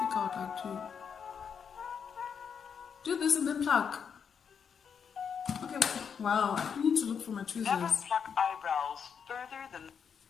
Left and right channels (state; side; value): quieter; right; 6.9 dB